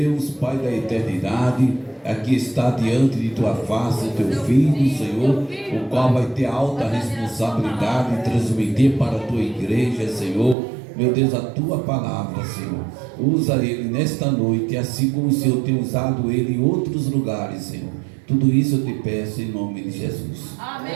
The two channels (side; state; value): left; drops out; at 10.6 s